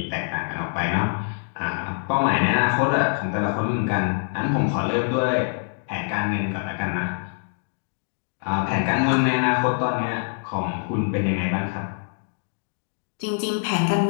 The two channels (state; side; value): silent; right; 58 dB below the other